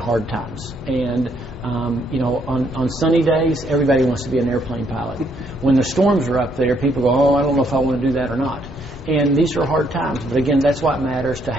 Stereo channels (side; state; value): both; normal; correlation 0.71